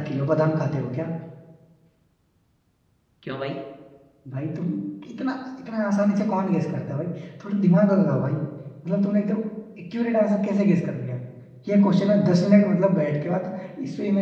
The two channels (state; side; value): identical; both; correlation 1.00